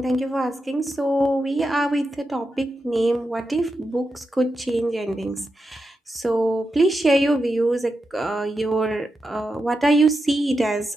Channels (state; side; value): normal; both; correlation 0.88